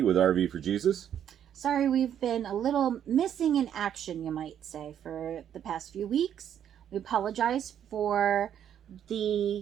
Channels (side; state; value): left; quieter; 9.6 dB